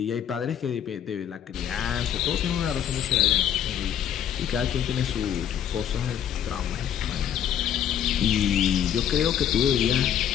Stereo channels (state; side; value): quieter; right; 9.7 dB